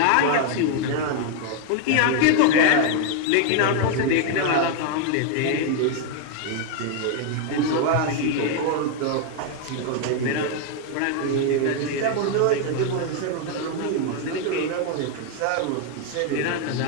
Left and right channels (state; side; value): different; both; correlation 0.01